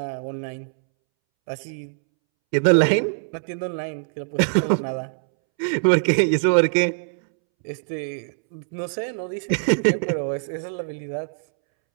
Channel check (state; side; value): silent; left; 63 dB below the other